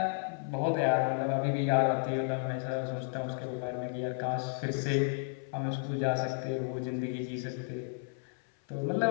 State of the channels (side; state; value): right; silent; 56 dB below the other